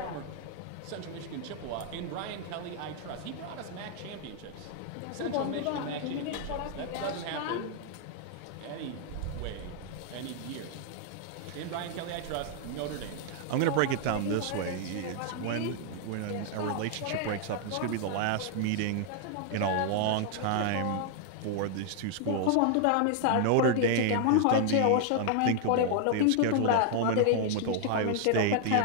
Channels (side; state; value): both; different; correlation 0.00